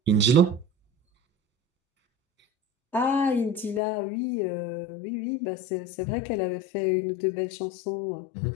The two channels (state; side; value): drops out; right; at 3.8 s